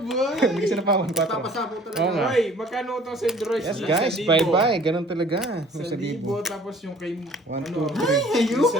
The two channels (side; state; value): both; normal; correlation 0.52